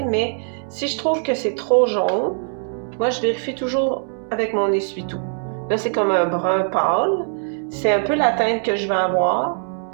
mais si je trouve que c'est trop jaune, Moi, je vérifie toujours avec mon essuie-tout. Là, c'est comme un brun pâle. C'est un peu la teinte que je vais avoir,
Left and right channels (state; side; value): silent; left; 65 dB below the other